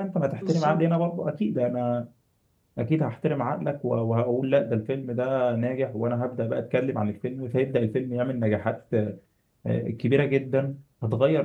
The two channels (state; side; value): identical; both; correlation 1.00